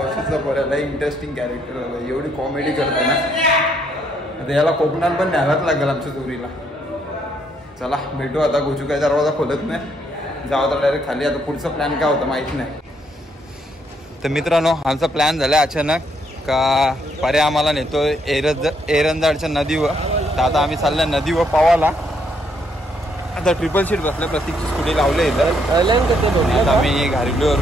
पर्याय इंटरेस्टिंग कॅरेक्टर आला एवढी कॉमेडी करतो ना आता याला कोकणात पण न्यायलाच लागेल आमच्या चोरीला चला भेटू आता गोचू काय दरवाजा खोलत नाही जाऊ तर डायरेक्ट खाली आता पुढचा प्लॅन काय होता माहित नाही तर मित्रांनो आमचा प्लॅन झाला अचानक का पर्याय आम्हाला नेतोय एरंजाडच्या नदीवर तर आता आम्ही चाललोय नदीवर पावाला आता ट्रिपल सीट बसल्या प्रत्येकची स्कूटी लावले इथं आम्ही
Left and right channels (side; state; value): both; normal; correlation 0.72